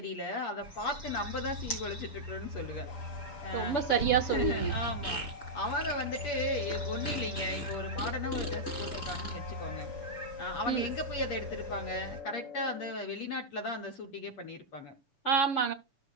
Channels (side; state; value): right; late; 6.9 ms